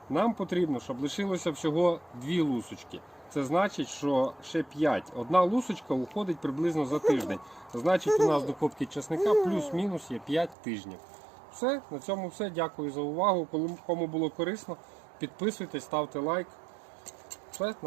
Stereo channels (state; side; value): drops out; left; at 10.6 s